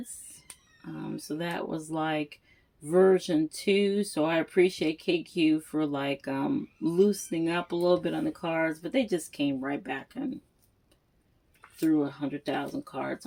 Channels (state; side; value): identical; both; correlation 1.00